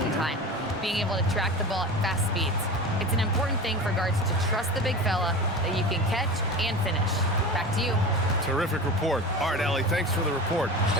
time, being able to track the ball at fast speeds. It's an important thing for guards to trust the big fella that you can catch and finish." Back to you. Terrific report. All right, Allie, thanks for the report.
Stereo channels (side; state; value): both; normal; correlation 0.31